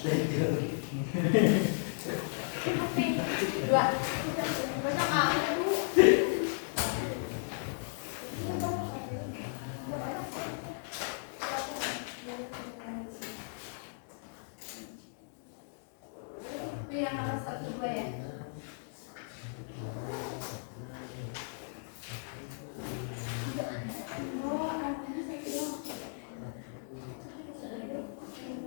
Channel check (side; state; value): right; silent; digital silence